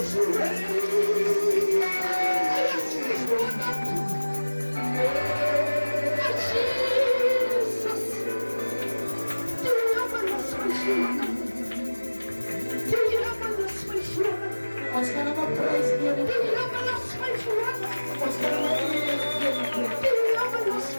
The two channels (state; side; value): inverted; both; correlation -1.00